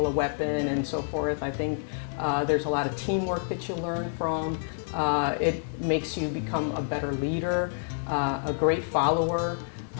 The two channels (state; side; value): silent; right; digital silence